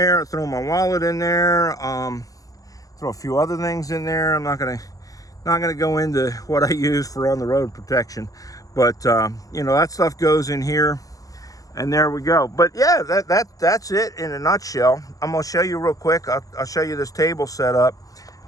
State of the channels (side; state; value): right; late; 0.17 ms